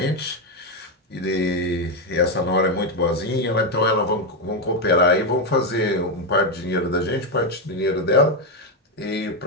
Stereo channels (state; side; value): normal; both; correlation 0.06